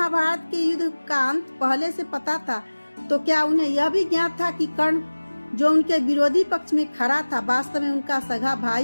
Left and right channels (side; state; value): both; inverted; correlation -1.00